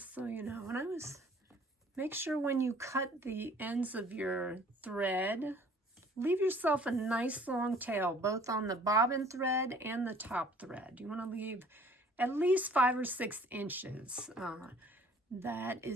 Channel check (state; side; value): normal; both; correlation 0.54